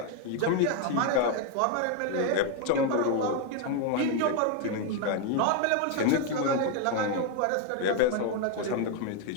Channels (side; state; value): both; different; correlation 0.01